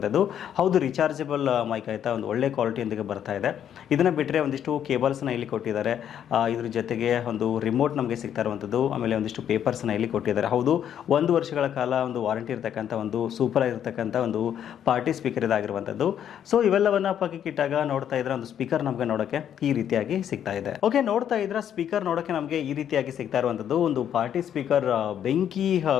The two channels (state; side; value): quieter; right; 9.6 dB